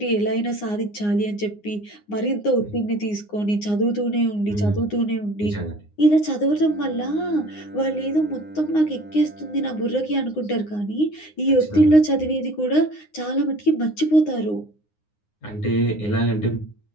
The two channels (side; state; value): right; late; 9.7 ms